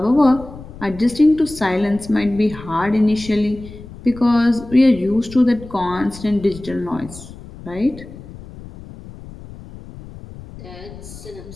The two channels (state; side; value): noise; left; rumble, 16 dB below the sound